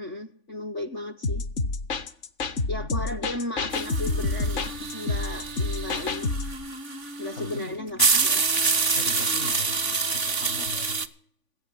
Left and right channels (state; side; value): late; right; 3.5 ms